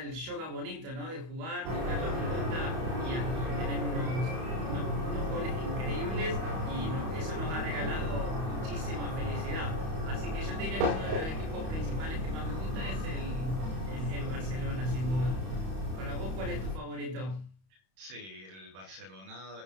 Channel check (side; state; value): left; late; 31 ms